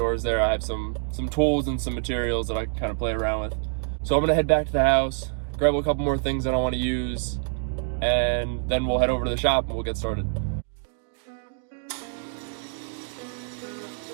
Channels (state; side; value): silent; left; 61 dB below the other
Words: there. I have some tools and some materials that I can kind of play around with. So I'm gonna head back to the house, grab a couple more things that I want to use, and then we'll head over to the shop and we'll get started.